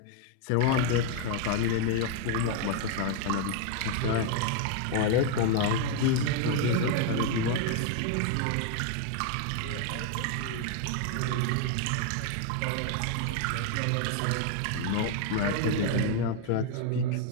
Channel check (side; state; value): both; different; correlation 0.00